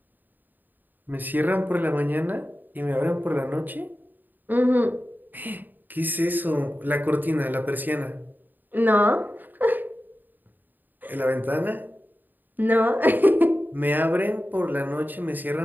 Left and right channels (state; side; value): late; left; 0.089 ms